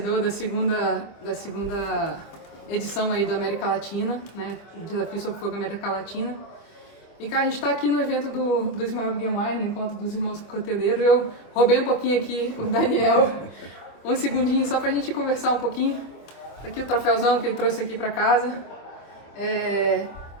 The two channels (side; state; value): right; late; 25 ms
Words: da segunda edição aí do América Latina, né? Desafio sobre Fogo América Latina. E cara, a gente está aqui no evento do Ismael Guiomar, no encontro dos irmãos coteleiros. Eu roubei um pouquinho aqui o Daniel, um segundinho só para a gente conversar um pouquinho. Aqui o troféuzão que ele trouxe aqui para casa.